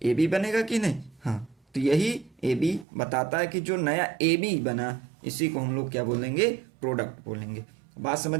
AB बनेगा कि नहीं? हाँ, तो यही AB बताता है कि जो नया AB बना इसी को हम लोग क्या बोलेंगे? प्रोडक्ट बोलेंगे। बात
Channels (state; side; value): drops out; left; at 2.9 s